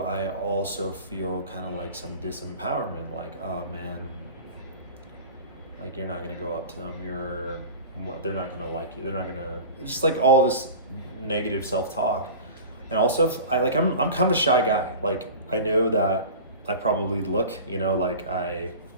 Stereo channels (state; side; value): inverted; both; correlation -0.36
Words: also feel kind of like some disempowerment, oh man, you're not going to go up to them. They're not going to like you. They're not going to, just all this negative self-talk. And also, I'm kind of a shy guy. I know that I probably look,